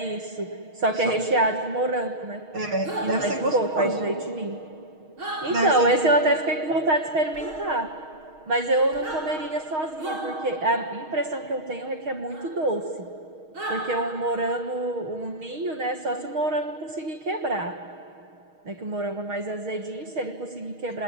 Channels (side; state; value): left; late; 6.4 ms